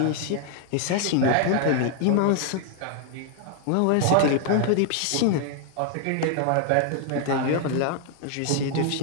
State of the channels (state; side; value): different; both; correlation 0.00